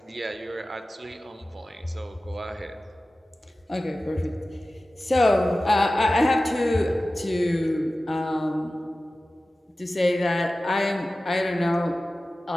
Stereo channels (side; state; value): both; normal; correlation 0.96